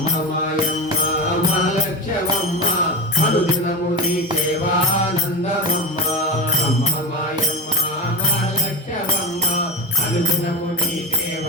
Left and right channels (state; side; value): normal; both; correlation 0.21